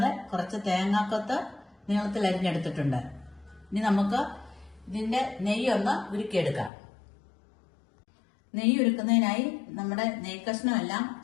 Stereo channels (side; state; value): right; drops out; at 6.7 s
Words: കുറച്ച് തേങ്ങാക്കൊത്ത് നീളത്തിൽ അരിഞ്ഞെടുത്തിട്ടുണ്ട്. ഇനി നമുക്ക് ഇതിന്റെ നെയ്യൊന്ന് ഉരുക്കിയെടുക്കാം. നെയ്യ് ഉരുക്കുന്നതിനായി നമ്മുടെ നെയ്ക്കഷ്ണം എല്ലാം